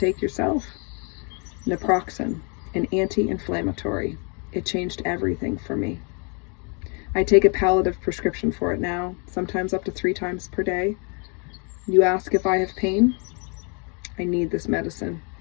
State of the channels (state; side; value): quieter; right; 36.1 dB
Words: yourself. Naproxen, an anti-inflammatory. It changed everything for me. I take a palliative prescription for it now, sometimes up to 3 times per day. You ask if I have pain? I need this medicine.